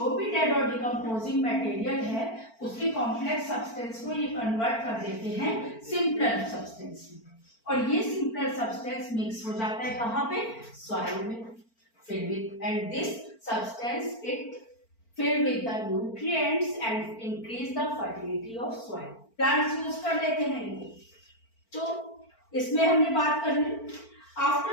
भी डेड और डिकम्पोजिंग मटेरियल है उसके कॉम्प्लेक्स सब्सटेंस को ये कन्वर्ट कर देते हैं सिंपलर सब्सटेंस में, और ये सिंपलर सब्सटेंस मिक्स हो जाता है कहाँ पे, सॉइल में, filled with, and this substance it filled with the nutrients and increase the fertility of soil. Plants use कर लेते हैं इनको, तो इसमें हमने बात कर ली।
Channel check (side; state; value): right; late; 4.4 ms